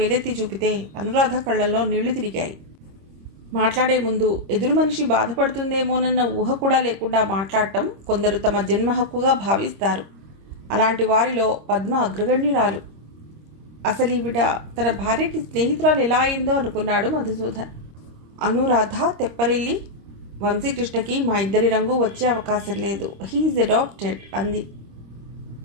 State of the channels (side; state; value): left; late; 26 ms